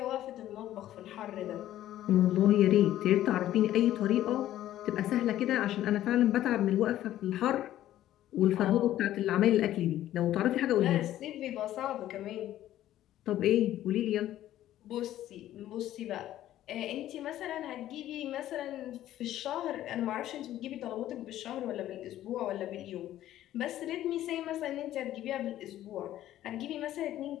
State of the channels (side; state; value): right; quieter; 13.1 dB